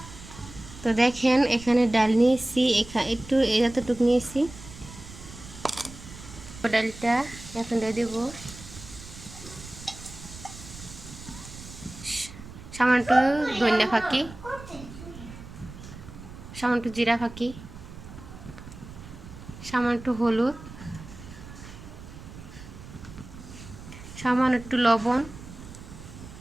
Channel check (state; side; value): noise; right; rumble, 15 dB below the sound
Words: তো দেখেন এখানে ডাল নিয়েছি, একটু এতটুকু নিয়েছি। ডালটা এখন দিয়ে দেবো সামান্য একটু ধনিয়া ফাঁকি, সামান্য একটু জিরা ফাঁকি, সামান্য একটু হলুদ, সামান্য একটু লবণ।